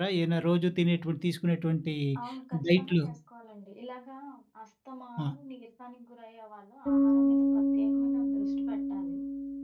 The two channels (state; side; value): identical; both; correlation 1.00